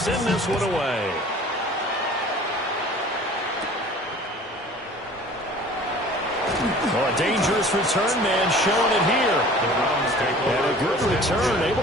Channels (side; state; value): both; normal; correlation 0.46